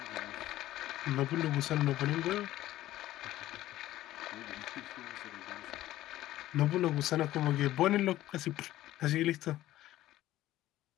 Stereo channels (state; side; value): quieter; right; 14.8 dB